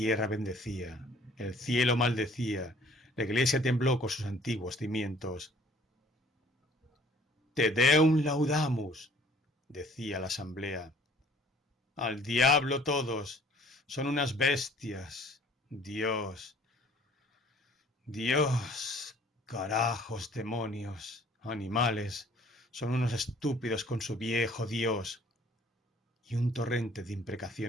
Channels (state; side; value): normal; both; correlation 0.56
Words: bendecía, el cielo maldecía, la iglesia tembló con sus antiguos cimientos. Te Deum laudamus, decía la asamblea. Al diablo todos, son unas bestias. Dios, Dios, carajos, demonios, animales, son unos estúpidos con su viejo Dios. Y un torrente de